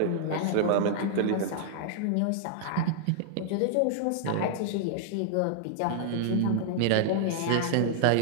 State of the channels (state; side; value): different; both; correlation -0.01